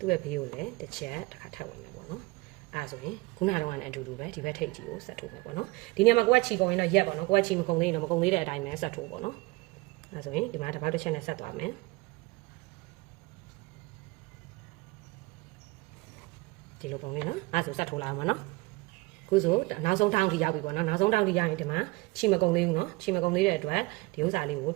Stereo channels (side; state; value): left; quieter; 23.0 dB